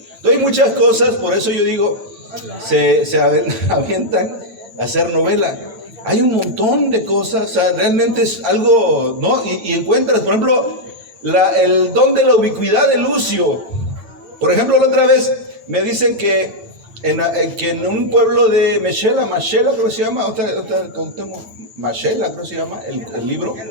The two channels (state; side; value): late; left; 9.1 ms